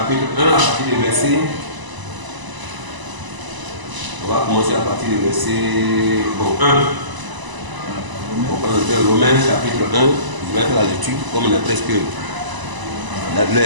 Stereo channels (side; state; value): left; late; 1.0 ms